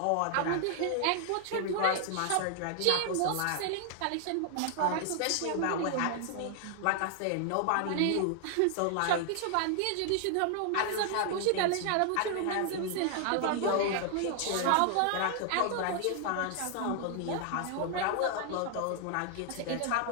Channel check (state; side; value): different; both; correlation 0.00